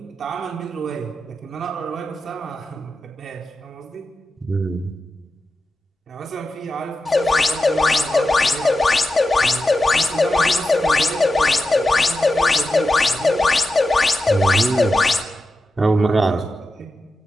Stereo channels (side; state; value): both; normal; correlation 0.90